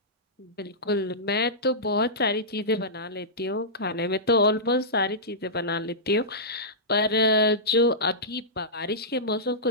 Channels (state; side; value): normal; both; correlation -0.16